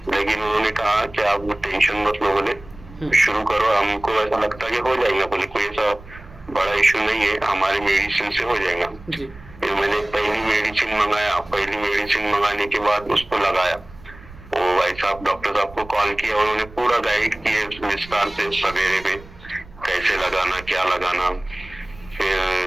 लेकिन उन्होंने कहा कि आप टेंशन मत लो, बोले शुरू करो, हमको ऐसा लगता है कि हो जाएगा, बोले कोई ऐसा बड़ा इशू नहीं है, हमारे मेडिसिन से हो जाएगा। जी। फिर मैंने पहली मेडिसिन मंगाया, पहली मेडिसिन मंगाने के बाद उसको लगाया। वो भाई साहब डॉक्टर साहब को कॉल किया, उन्होंने पूरा गाइड किया विस्तार से सवेरे में कैसे लगाना, क्या लगाना। फिर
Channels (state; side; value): noise; right; rumble, 19 dB below the sound